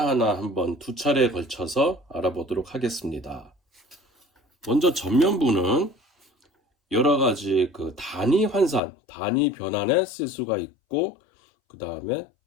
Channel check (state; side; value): drops out; right; at 8.8 s